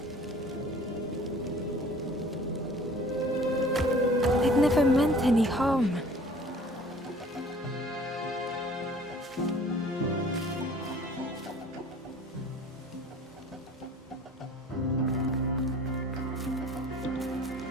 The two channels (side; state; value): both; normal; correlation 0.49